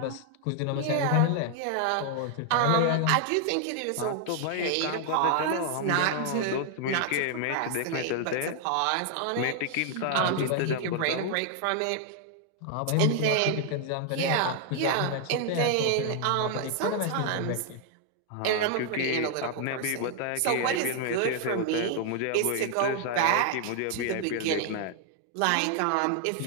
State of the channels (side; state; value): both; different; correlation 0.00